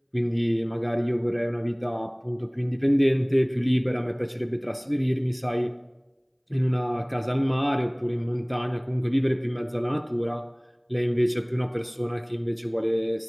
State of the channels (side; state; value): both; identical; correlation 1.00